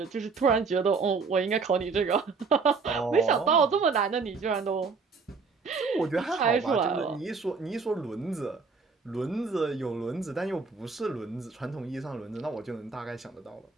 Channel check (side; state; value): left; quieter; 4.8 dB